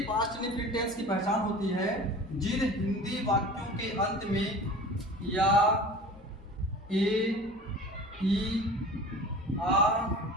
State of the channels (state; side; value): normal; both; correlation 0.39